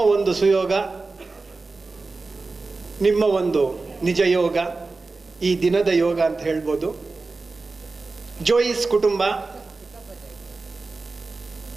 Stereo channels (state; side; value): quieter; left; 3.8 dB